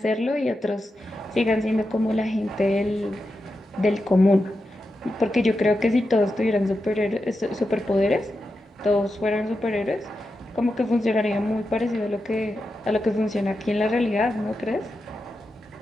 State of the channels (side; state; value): both; normal; correlation 0.89